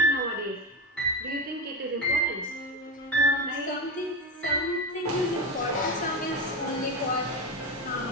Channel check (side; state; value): both; normal; correlation 0.18